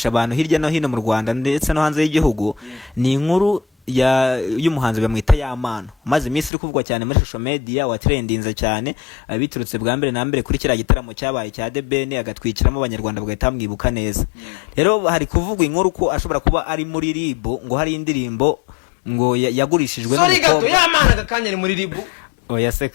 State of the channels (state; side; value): drops out; right; at 6.5 s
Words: abantu hirya no hino mu Rwanda ndetse no hanze y'igihugu ni inkuru y'umuhanzi bamwita Yamano maze iminsi iri kuvugwa cyane muri social media wa trendinze cyane biturutse bwa mbere na mbere kuri kira gitaramo cyabaye cya The Ben agatwikiramo abanyarwanda bagahita mwibuka neza rero hari kuvugwa inkuru ko ashobora kuba ari muri RIB ngo hari indirimbo ngo yagurishijwe sorry gato Yamano agakanya ari muri RIB oya se